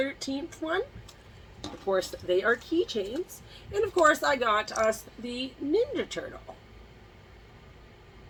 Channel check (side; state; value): both; identical; correlation 1.00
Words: one. Of course, they are keychains. And of course, I got us the Ninja Turtle